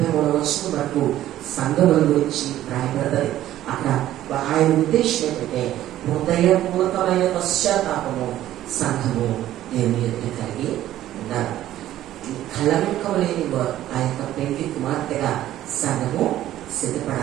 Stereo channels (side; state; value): left; quieter; 13.3 dB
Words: వచనం వరకు సంఘముల గురించి రాయబడతాయి. అక్కడ ఆయన ఉద్దేశం ఏంటంటే హృదయపూర్వకమైన పశ్చాత్తాపము సంఘము దేవుని ఎదుట కలిగి ఉన్నారు. కళంకం లేని ఆ యొక్క పెళ్లి కుమార్తెగా సంఘము